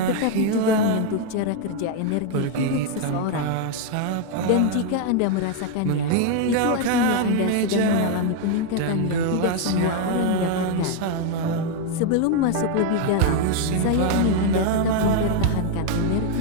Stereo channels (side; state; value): both; different; correlation 0.01